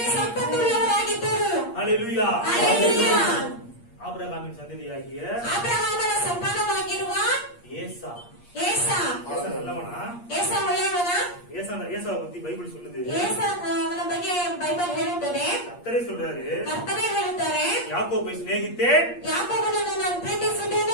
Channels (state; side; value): late; right; 8.5 ms